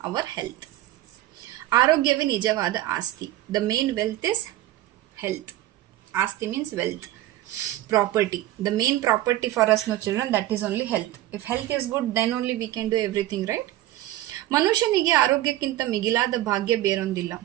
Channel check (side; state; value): left; quieter; 14.9 dB